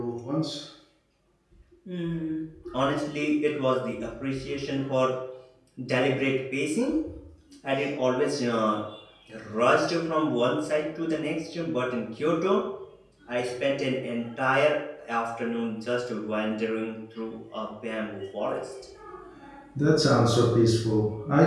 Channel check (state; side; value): identical; both; correlation 1.00